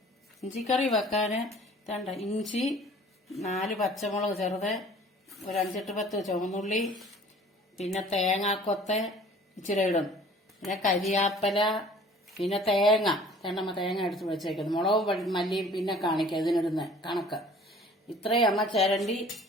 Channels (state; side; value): normal; both; correlation 0.50